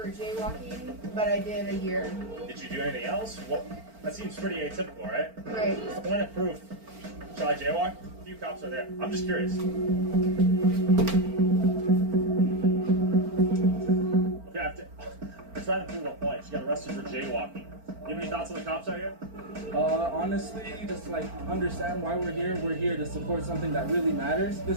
jaywalking, but I did a year. Did you do anything else? Well, that seems pretty atypical, right? Right. Point of proof. Shall I jaywalk? A few cops are there. I'm just curious. Okay, I'm trying to prove a point. She got arrested for jaywalking. You have any thoughts on the cops out here? Honestly, just like understand why we're here. We're here to support something that really matters. This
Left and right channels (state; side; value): late; left; 4.4 ms